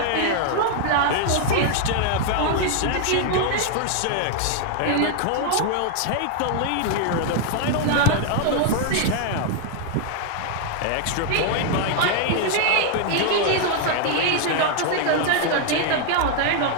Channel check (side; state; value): both; different; correlation 0.00